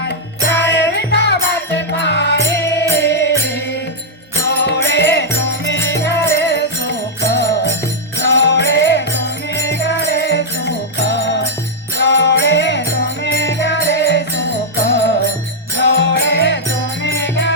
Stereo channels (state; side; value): normal; both; correlation -0.06